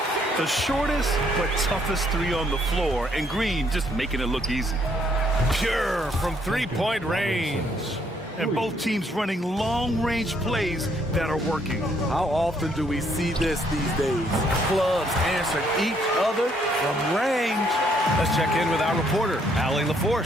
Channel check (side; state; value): both; normal; correlation 0.69